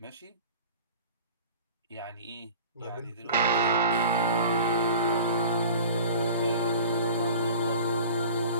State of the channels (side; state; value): both; inverted; correlation -0.41